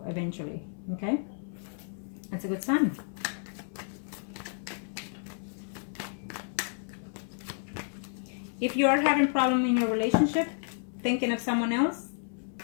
eventually. Okay, that's a good sign. If you are having problem in your relationship, thinking of someone else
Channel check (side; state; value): right; silent; 57 dB below the other